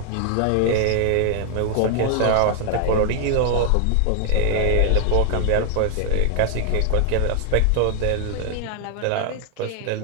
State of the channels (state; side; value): different; both; correlation 0.00